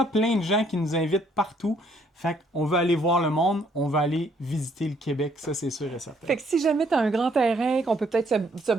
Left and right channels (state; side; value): normal; both; correlation 0.66